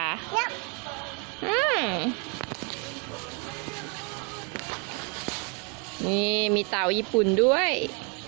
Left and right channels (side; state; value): left; quieter; 35.0 dB